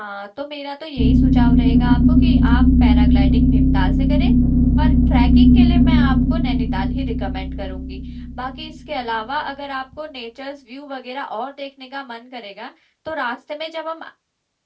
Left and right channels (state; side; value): identical; both; correlation 1.00